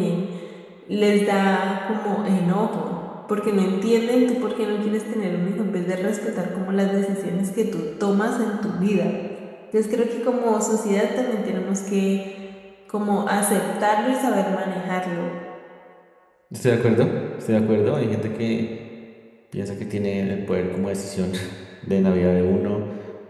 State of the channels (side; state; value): both; identical; correlation 1.00